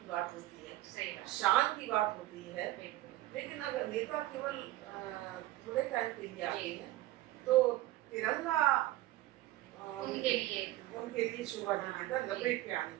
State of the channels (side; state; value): left; quieter; 16.2 dB